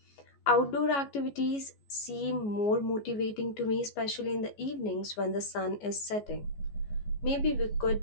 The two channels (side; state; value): right; late; 14 ms